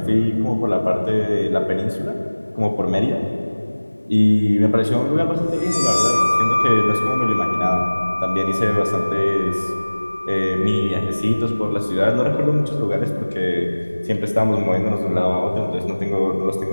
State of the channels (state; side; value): inverted; both; correlation -1.00